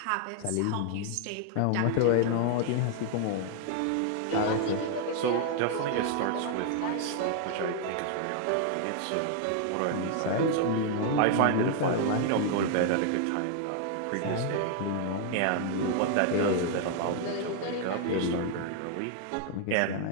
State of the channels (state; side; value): different; both; correlation 0.00